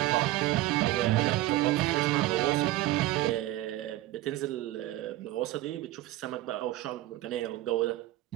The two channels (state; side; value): quieter; left; 16.1 dB